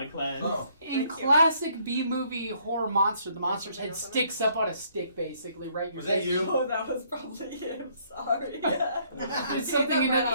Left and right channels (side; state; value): both; inverted; correlation -0.66